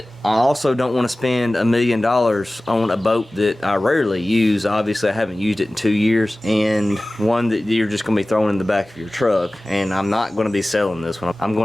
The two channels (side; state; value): both; normal; correlation 0.97